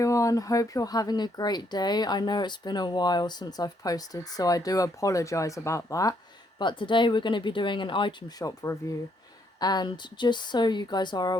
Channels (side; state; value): both; normal; correlation 0.72